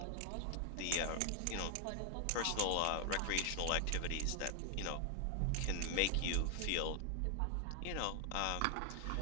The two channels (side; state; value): both; different; correlation 0.00